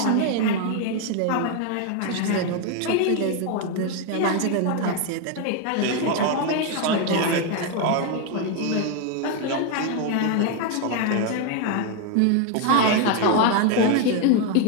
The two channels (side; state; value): both; different; correlation 0.01